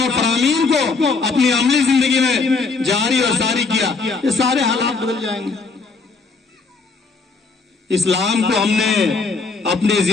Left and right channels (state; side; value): quieter; right; 4.3 dB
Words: اور فرامین کو اپنی عملی زندگی میں جاری اور ساری کیا, یہ سارے حالات بدل جائیں گے. اسلام کو ہم نے اپنی